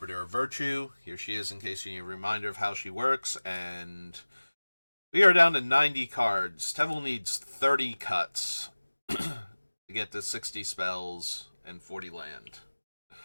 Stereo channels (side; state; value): both; inverted; correlation -1.00